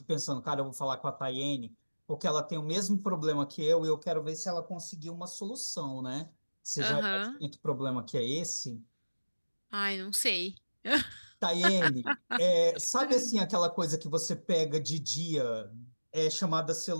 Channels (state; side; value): inverted; both; correlation -1.00